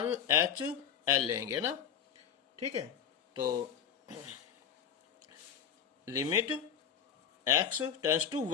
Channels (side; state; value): right; quieter; 8.4 dB